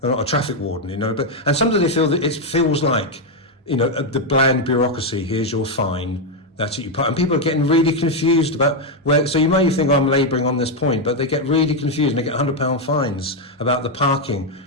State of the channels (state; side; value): normal; both; correlation 0.03